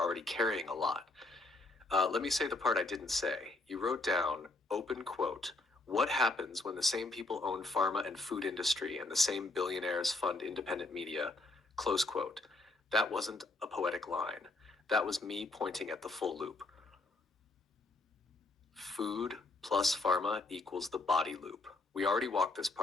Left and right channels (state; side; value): quieter; right; 3.1 dB